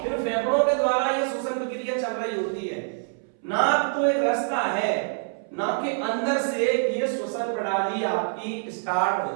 फिर फेफड़ों के द्वारा ये श्वसन प्रक्रिया चल रही होती है। नाक तो एक रास्ता है, नाक के अंदर से ये श्वसन प्रणाली आपकी स्टार्ट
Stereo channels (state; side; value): silent; left; 61 dB below the other